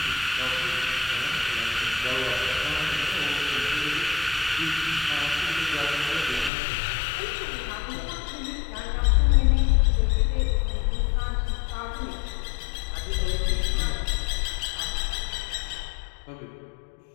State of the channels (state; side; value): drops out; right; at 6.5 s